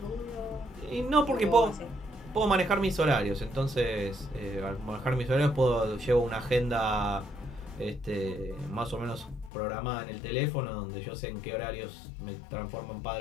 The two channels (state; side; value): drops out; right; at 9.5 s